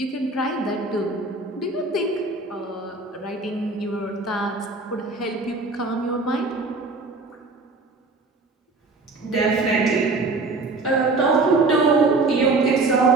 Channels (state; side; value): quieter; left; 3.5 dB